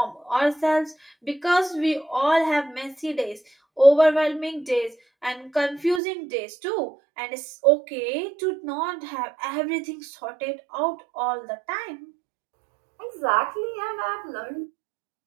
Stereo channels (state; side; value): drops out; left; at 6.0 s